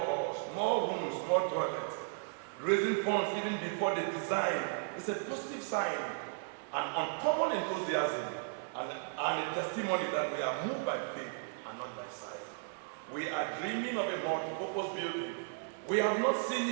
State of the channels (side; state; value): left; silent; 54 dB below the other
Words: more rooms, more toilets. Raising funds even before the design is a positive sign, an uncommon enthusiasm, and a testimony that we are moved by faith and not by sight. We are dreaming of a multi-purpose building. We have not seen